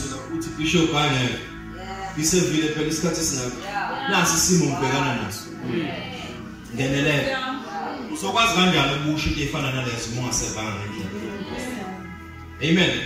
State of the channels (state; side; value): identical; both; correlation 1.00